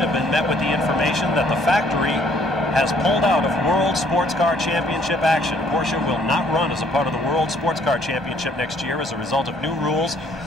have been met with the information that the factory has pulled out of World Sports Car Championship action. Porsche will not run as a part of the World Sports Car Championship next year as a result of new rules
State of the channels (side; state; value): both; normal; correlation 0.63